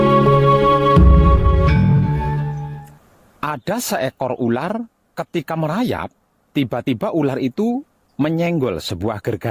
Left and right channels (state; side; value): identical; both; correlation 1.00